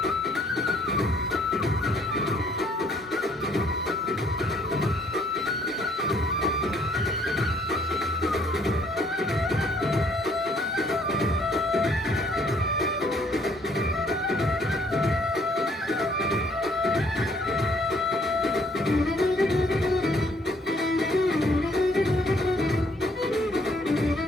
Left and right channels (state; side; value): normal; both; correlation 0.64